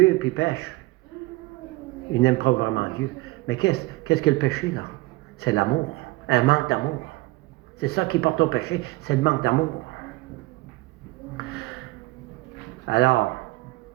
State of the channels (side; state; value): left; quieter; 21.3 dB